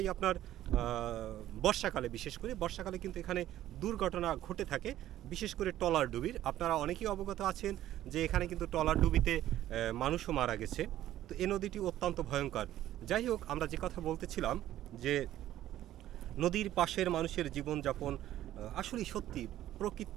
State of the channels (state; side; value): quieter; left; 13.2 dB